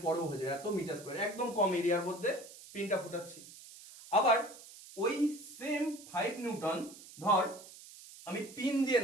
পরেও হয়ে যাবে, এত মিটার স্কয়ার, একদম কম এরিয়ার মধ্যে পিনটা ফুটাচ্ছি। আবার ওই সেম 5 নিউটন ধর আমি পিন দিয়ে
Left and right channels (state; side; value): noise; right; hiss, 17 dB below the sound